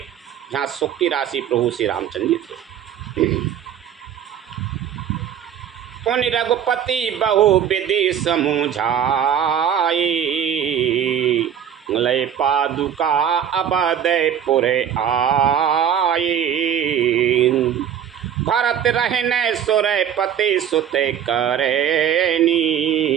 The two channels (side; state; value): left; quieter; 9.1 dB